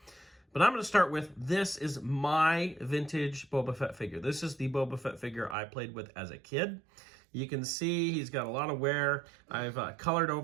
But I'm going to start with, this is my vintage Boba Fett figure. This is the Boba Fett figure I played with as a kid. You can see he's got a lot of wear. I've colored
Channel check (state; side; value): drops out; left; at 5.6 s